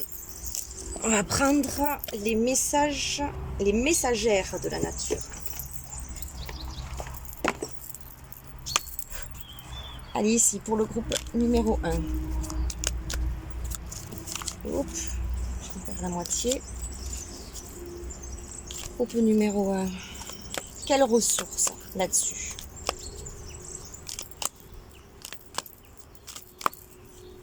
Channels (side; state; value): both; identical; correlation 1.00